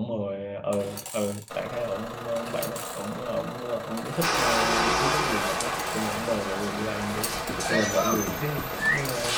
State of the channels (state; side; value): identical; both; correlation 1.00